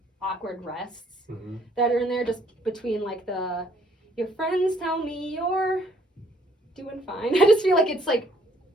awkward rests Mm-hmm. that are in there, just between like your friends tell me you're doing fine. I just feel like it's like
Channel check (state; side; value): normal; both; correlation 0.64